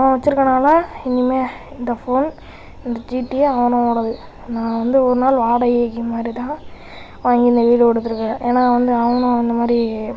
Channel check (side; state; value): both; identical; correlation 1.00